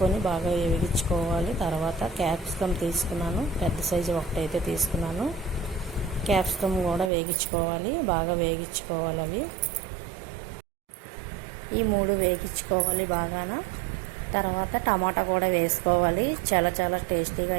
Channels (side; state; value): left; drops out; at 7.1 s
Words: బాగా వేగించుకోవాలి. తర్వాత క్యాప్సికమ్ తీసుకున్నాను, పెద్ద సైజు ఒకటైతే తీసుకున్నాను. క్యాప్సికమ్ కూడా వేగించుకోవాలి, బాగా వేగించుకోవాలి. అవి ఈ 3 వేగించుకోవాలి బాగాన. తర్వాత టమాటా కూడా వేసుకోవాలి. చాలా టేస్టీగా